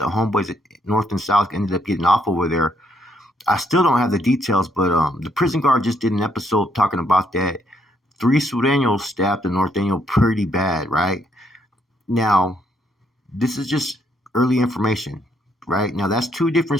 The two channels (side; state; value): both; normal; correlation 0.72